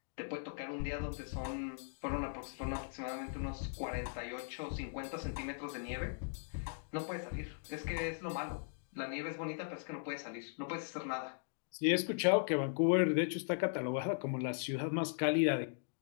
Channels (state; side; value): silent; right; digital silence